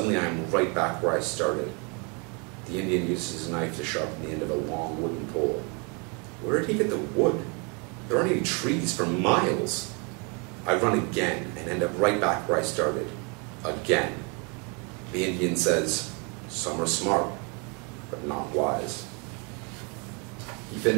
I am right back where I started. The Indian uses his knife to sharpen the end of a long wooden pole. Where did he get the wood? There aren't any trees for miles. I run again and end up right back where I started. Again. The Indian says, "Some are smart, but not wise." He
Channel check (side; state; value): left; quieter; 33.1 dB